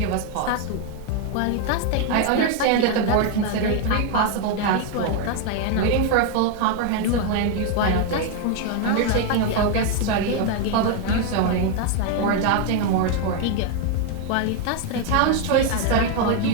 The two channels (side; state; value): both; different; correlation 0.01